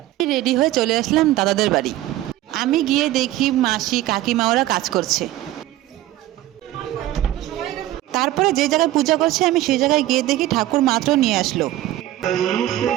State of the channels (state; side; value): quieter; left; 15.0 dB